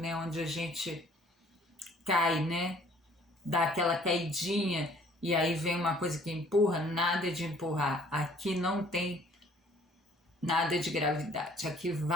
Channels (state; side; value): normal; both; correlation 0.57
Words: onde a gente cai, né, dá aquela caidinha e aí vem uma coisa que empurra. Nada de empurrar, aqui não tem nada de gravidade, aqui